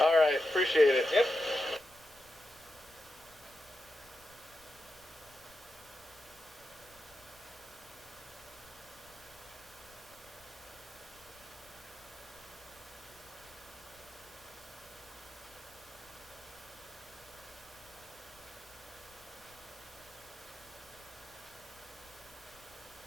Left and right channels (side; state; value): left; noise; rumble, 26 dB below the sound